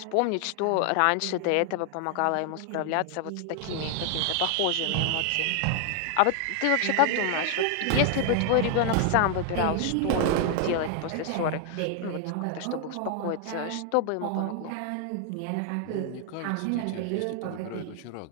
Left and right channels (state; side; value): different; both; correlation 0.00